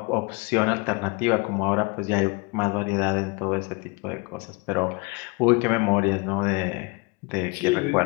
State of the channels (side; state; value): right; quieter; 28.4 dB